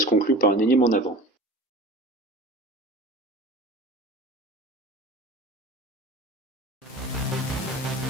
conclut par un énième en avant.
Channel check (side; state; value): both; normal; correlation 0.37